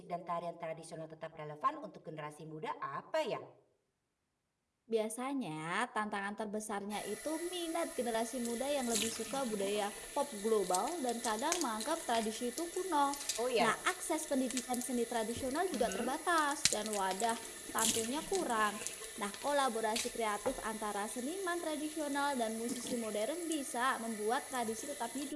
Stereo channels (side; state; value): both; identical; correlation 1.00